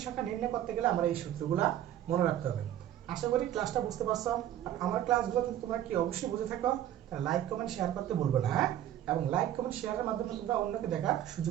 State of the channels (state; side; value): quieter; left; 11.8 dB